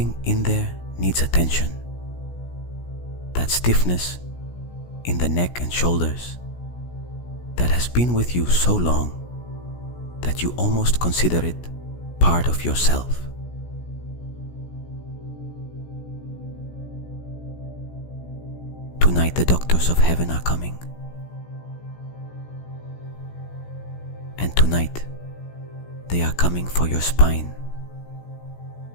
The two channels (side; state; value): right; late; 17 ms